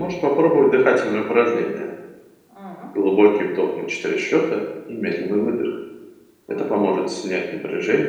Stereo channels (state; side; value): identical; both; correlation 1.00